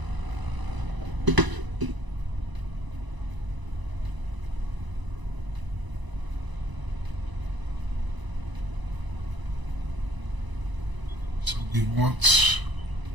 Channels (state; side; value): late; left; 1.0 ms